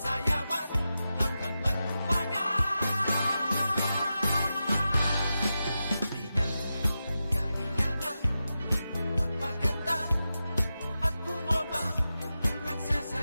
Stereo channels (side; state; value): both; inverted; correlation -0.91